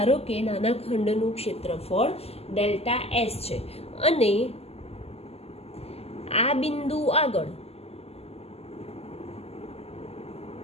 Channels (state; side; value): late; right; 0.29 ms